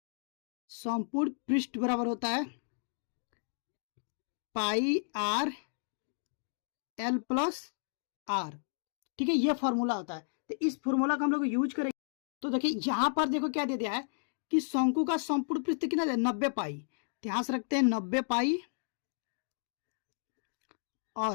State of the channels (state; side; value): silent; right; digital silence